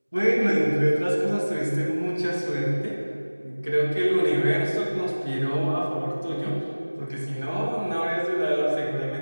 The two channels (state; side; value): inverted; both; correlation -1.00